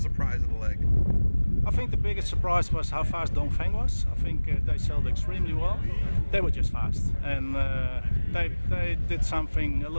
surprise of the leg? I think the biggest surprise was how fast Dongfeng was. I think they sailed extremely well. They were just fast, and they did something a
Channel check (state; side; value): inverted; both; correlation -1.00